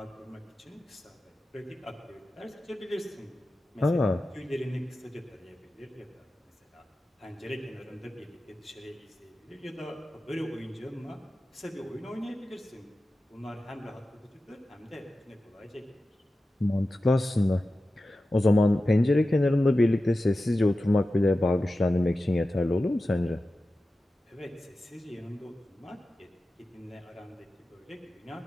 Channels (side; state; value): both; normal; correlation 0.94